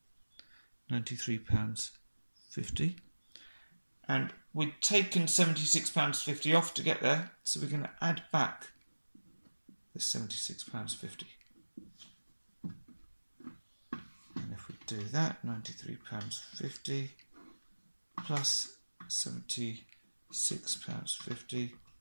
£93.50. And we'd taken £76.50 off to get there, so we're going to add back the £76.50. And if we do that, £93.50 plus £76.50,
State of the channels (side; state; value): both; inverted; correlation -1.00